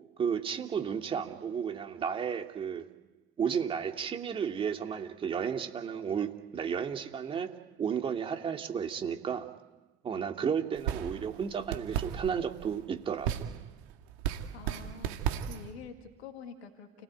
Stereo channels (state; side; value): quieter; left; 7.2 dB